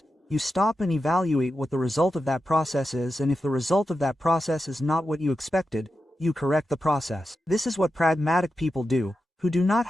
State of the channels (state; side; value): normal; both; correlation 0.90